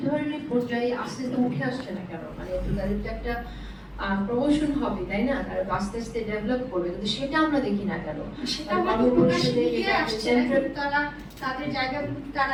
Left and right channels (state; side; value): identical; both; correlation 1.00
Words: পর্যায়ে আস্তে আস্তে উঠে আসছে না কেন? মানে তাদের যে একটা প্রমোশন হবে, তাই না, তারা আস্তে আস্তে ডেভেলপ করবে, কিন্তু সেটা আমরা দেখি না কেন? তারা তাদের জায়গাগুলো তারা